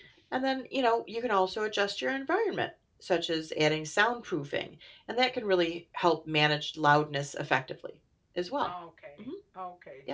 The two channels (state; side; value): identical; both; correlation 1.00